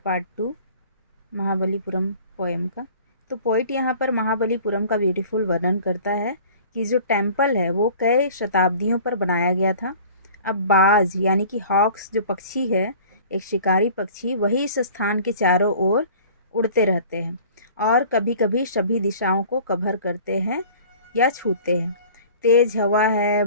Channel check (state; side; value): inverted; both; correlation -0.46